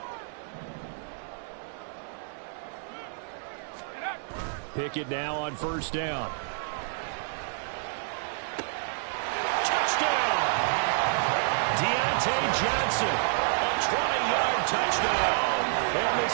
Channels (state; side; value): silent; left; 59 dB below the other